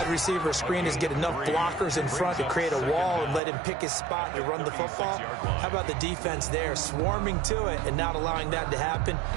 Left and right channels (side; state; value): left; drops out; at 3.4 s